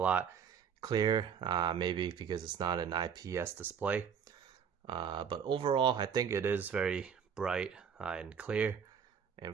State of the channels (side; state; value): left; quieter; 7.3 dB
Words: clearer, maybe because it's not an IPS display. But overall, I think it is very bright and clear.